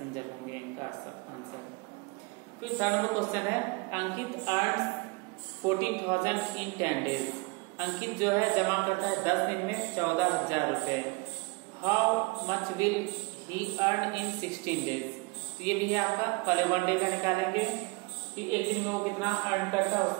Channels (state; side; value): quieter; left; 27.7 dB